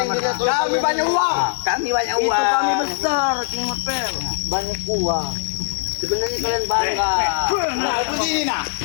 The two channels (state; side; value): silent; right; 59 dB below the other